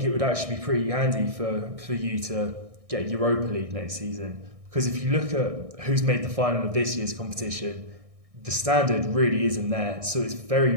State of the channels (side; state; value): left; late; 1.6 ms